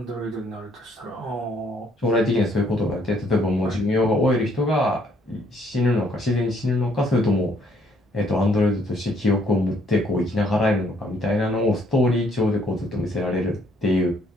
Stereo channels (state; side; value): normal; both; correlation 0.66